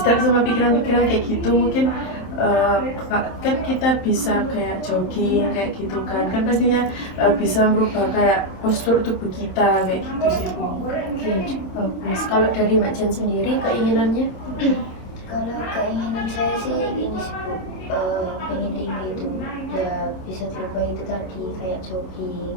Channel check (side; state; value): right; late; 27 ms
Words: sama pikiran-pikiran kayak gitu, mungkin kan kita bisa kayak jogging kayak gitu kan pastinya bisa merubah kayak postur tubuh kita kayak gitu sih. Oke, bagus. Kalau dari Mbak Jan sendiri keinginannya? Kalau keinginan saya sih ini sih Bu, pengen tinggi itu ya bisa dirubah itu tadi kayak jogging